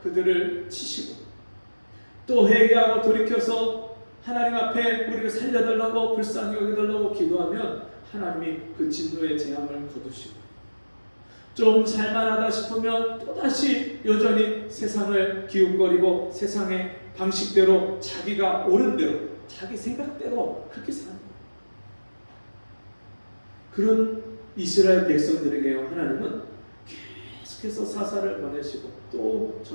그들을 치시고 또 회개하고 돌이켜서 하나님 앞에 우리를 살려달라고 불쌍히 여겨달라고 기도하면 하나님이 그 진노의 재앙을 거두시고 좀 살만하다 싶으면 또다시 여전히 세상을 기웃거리고 세상의 방식대로 자기가 옳은 대로 자기 생각대로 그렇게 사는 거예요. 그런 이스라엘 백성들에게 하나님은 계속해서 사사를 보내시고 또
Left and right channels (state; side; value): inverted; both; correlation -1.00